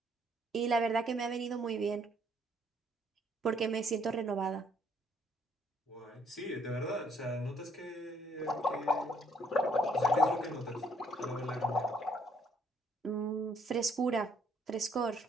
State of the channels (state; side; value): normal; both; correlation 0.67